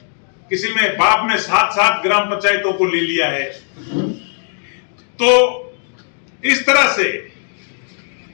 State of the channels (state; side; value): silent; right; 67 dB below the other